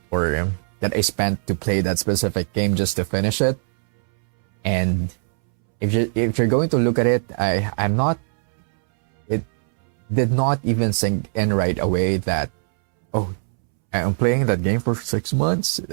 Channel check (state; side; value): silent; left; 65 dB below the other